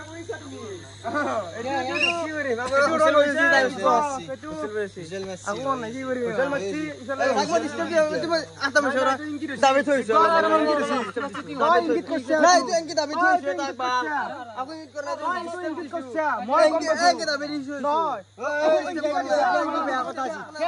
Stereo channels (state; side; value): identical; both; correlation 1.00